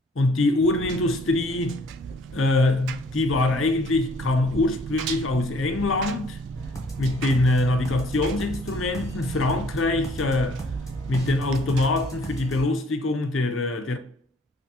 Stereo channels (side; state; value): both; normal; correlation 0.59